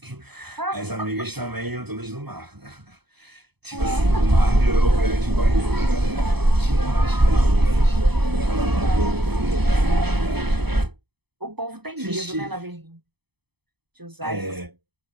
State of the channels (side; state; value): left; late; 0.98 ms